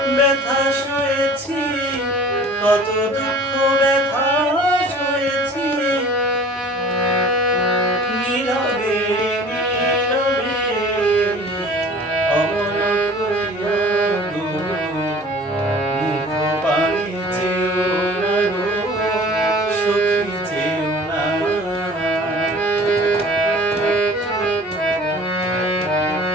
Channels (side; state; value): both; normal; correlation 0.46